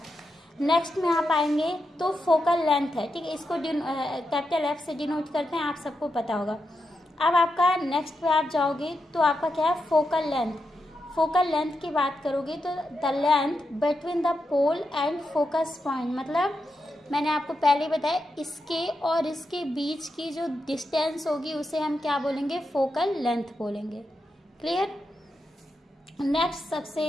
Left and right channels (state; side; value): normal; both; correlation 0.86